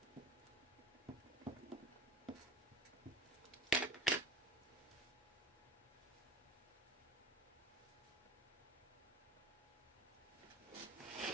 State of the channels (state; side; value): normal; both; correlation 0.38